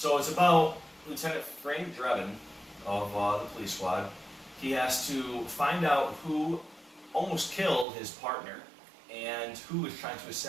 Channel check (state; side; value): drops out; left; at 7.9 s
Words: it's about Lieutenant Frank Drebin of the police squad. He has to find out who almost killed his partner and who is trying to